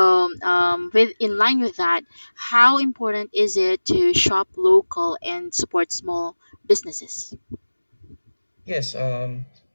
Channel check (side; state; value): both; inverted; correlation -1.00